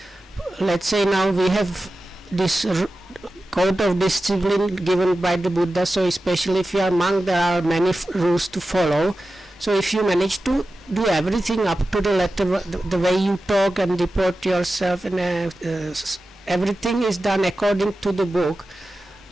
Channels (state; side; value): normal; both; correlation 0.94